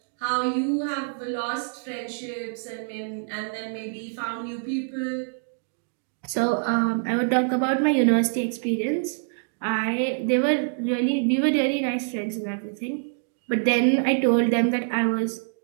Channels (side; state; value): left; silent; digital silence